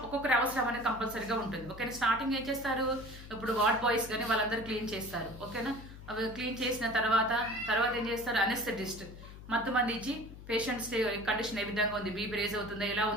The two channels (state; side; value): noise; left; hum, 15 dB below the sound